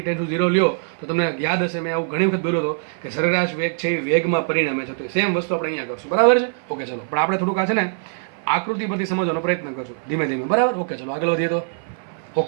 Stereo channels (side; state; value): left; silent; 57 dB below the other